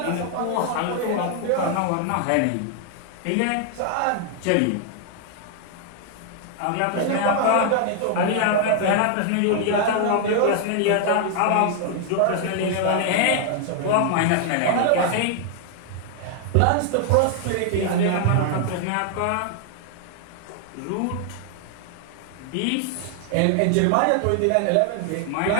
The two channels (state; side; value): different; both; correlation 0.00